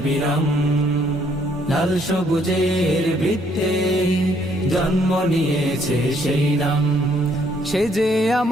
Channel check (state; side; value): normal; both; correlation 0.67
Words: লাল সবুজের বৃত্তে জন্ম নিয়েছে সেই নাম। সে যে